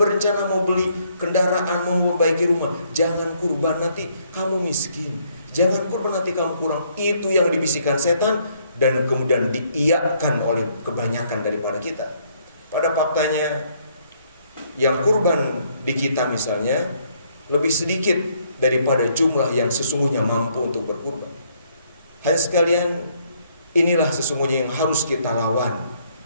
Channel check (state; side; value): inverted; both; correlation -0.68